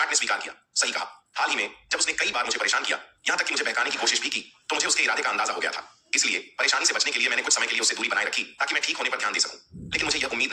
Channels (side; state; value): both; identical; correlation 1.00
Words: ने स्वीकार किया, सही कहा। हाल ही में जब उसने कई बार मुझे परेशान किया, यहां तक कि मुझे बहकाने की कोशिश भी की, तो मुझे उसके इरादे का अंदाजा हो गया था। इसलिए परेशानी से बचने के लिए मैंने कुछ समय के लिए उससे दूरी बनाए रखी ताकि मैं ठीक होने पर ध्यान दे सकूं। लेकिन मुझे यह उम्मीद